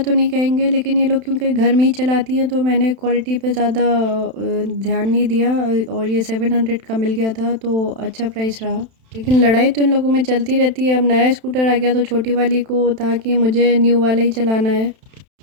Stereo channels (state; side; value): late; left; 31 ms